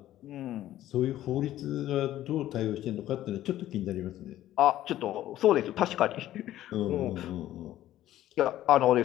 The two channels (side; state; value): right; quieter; 13.5 dB